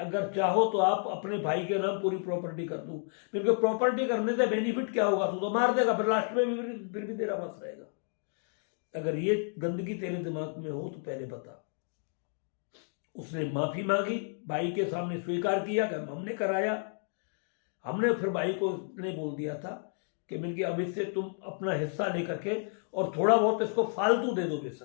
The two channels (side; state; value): right; silent; 57 dB below the other